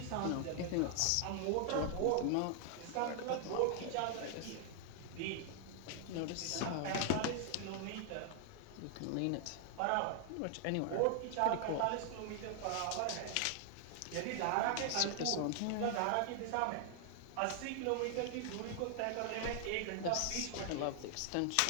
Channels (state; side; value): different; both; correlation 0.00